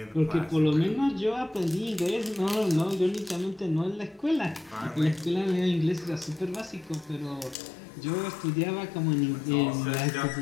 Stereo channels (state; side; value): drops out; right; at 7.6 s